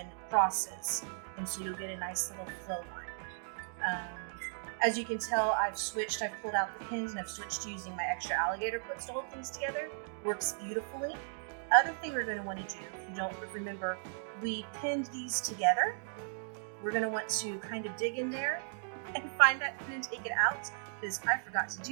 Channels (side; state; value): left; silent; digital silence